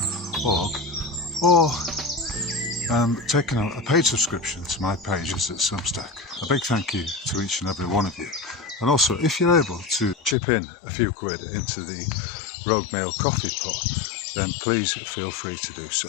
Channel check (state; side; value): drops out; right; at 10.4 s